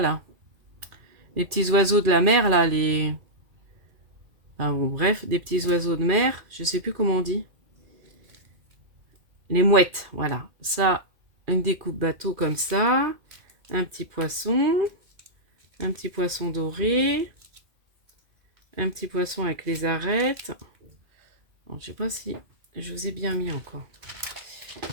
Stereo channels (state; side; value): late; left; 2.4 ms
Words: là? Les petits oiseaux de la mer, là. Enfin, bon, bref, des petits oiseaux de mer. Je sais plus comment on dit. Les mouettes, voilà. Ça, une découpe bateau comme ça. Un petit poisson. Un petit poisson doré, un petit poisson avec les arêtes. Bon, je sais pas si je vous ai bien mis encore.